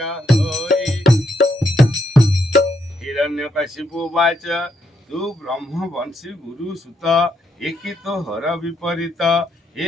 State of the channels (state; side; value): normal; both; correlation 0.77